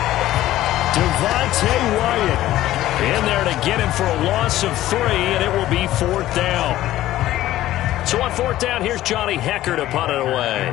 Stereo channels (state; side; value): quieter; right; 14.6 dB